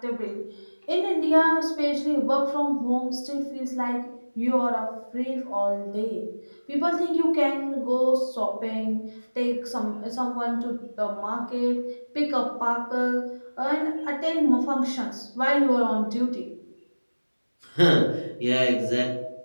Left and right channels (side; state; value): both; inverted; correlation -1.00